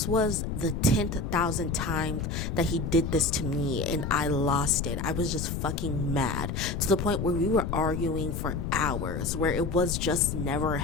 was the 10,000th time that he did this to me, and I lost it. I was just fucking mad to the point where we were arguing for hours, where it was just never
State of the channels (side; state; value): left; noise; rumble, 3 dB below the sound